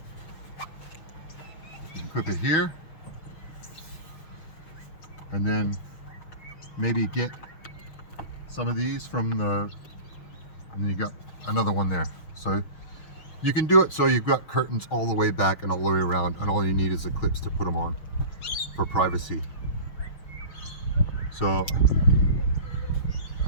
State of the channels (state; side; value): late; right; 6.4 ms